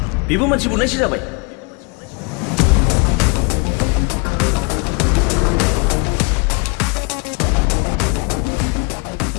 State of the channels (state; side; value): quieter; right; 31.9 dB